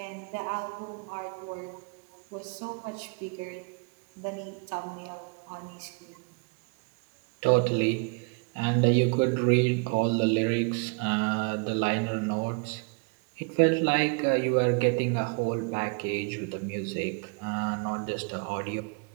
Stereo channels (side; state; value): left; quieter; 33.9 dB